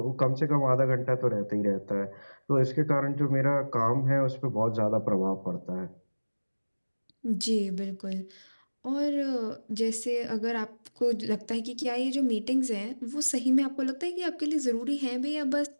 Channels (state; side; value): inverted; both; correlation -1.00